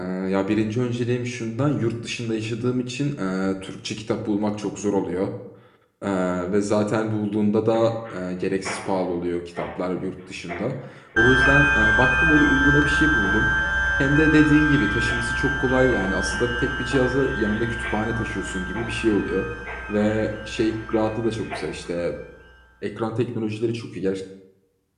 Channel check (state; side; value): identical; both; correlation 1.00